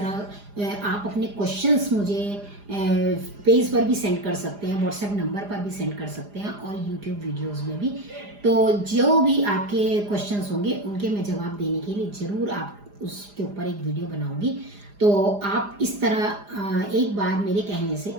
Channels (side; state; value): left; late; 4.9 ms